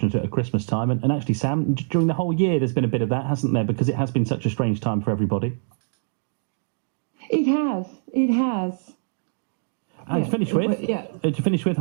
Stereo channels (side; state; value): left; silent; digital silence